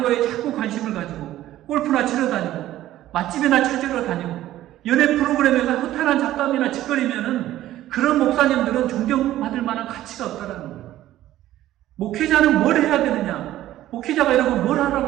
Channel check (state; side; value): quieter; left; 14.0 dB